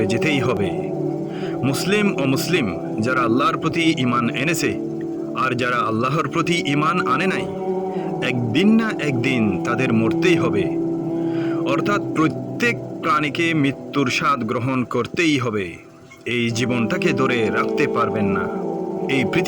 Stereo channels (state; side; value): identical; both; correlation 1.00